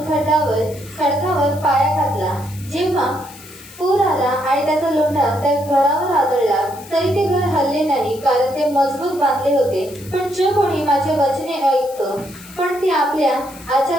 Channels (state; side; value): noise; left; hiss, 19 dB below the sound